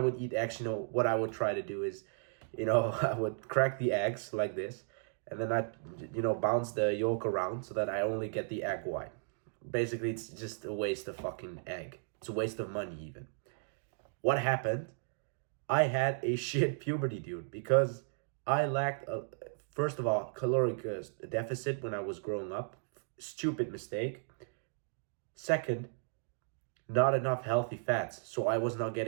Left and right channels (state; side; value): silent; left; digital silence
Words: eat eggs, what I would try to do is, I would crack the eggs like this, and then I, bounce the yolk around so that I only get the egg white. Basically, it's just a waste of fucking egg. It's a waste of money, even. What happened? I had a shit puberty, dude, because I lacked, first of all, caloric deficit when I was growing up. Stupid mistake. Second, not enough healthy fats, so I was not